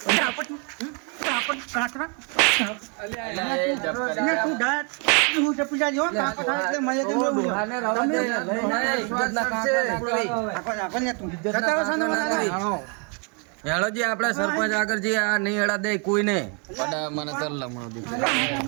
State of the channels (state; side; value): quieter; left; 36.2 dB